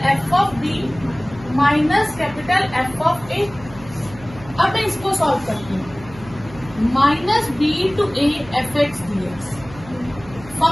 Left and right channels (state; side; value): noise; right; hum, 18 dB below the sound